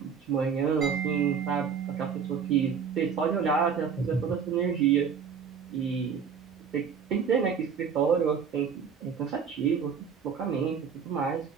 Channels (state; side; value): quieter; left; 6.7 dB